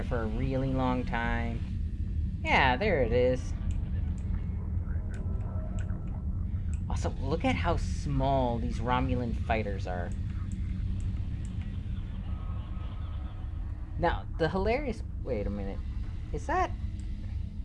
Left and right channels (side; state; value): both; identical; correlation 1.00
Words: for a really long time. Yeah, there it is. Also, look at how small these Romulan fighters are. Now, the hilarious... Wait a minute. Is that...